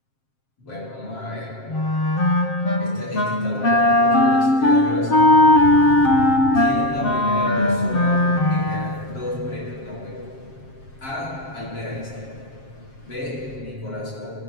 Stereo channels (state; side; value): late; right; 7.5 ms